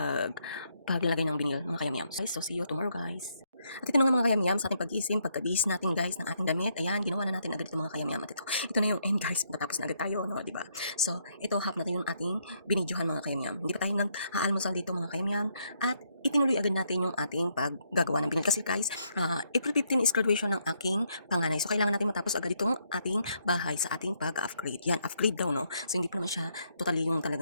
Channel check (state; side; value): inverted; both; correlation -0.74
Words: paglalagay ng binil mga kayamyam. So, see you tomorrow guys. At ito na nga mga kayamyam sa ating pag-isip, pagkabihis natin guys ng ating damit. Ayan, ginawa na natin agad ito mga kayamyam. At ito na yung end guys, matapos na agad tayo, no, di ba? So, ito half natin yung ating binidyohan mga kayamyam. Hindi pa tayo nag-aalmusal dito mga kayamyam. At itinuloy agad natin yung ating paggagawa ng binil. Kasi guys, April 15 is graduation ng aking panganay. So, kailangan natin matapos agad itong ating bahay sa ating pag-upgrade. Yan, upgrade daw, no? So, hindi pa naman siya totally yung